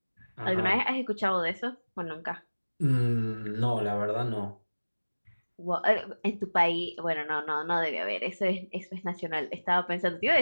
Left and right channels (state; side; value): inverted; both; correlation -1.00